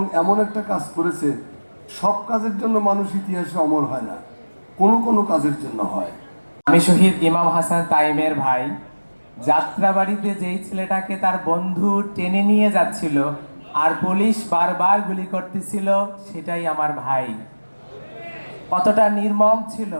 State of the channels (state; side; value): inverted; both; correlation -1.00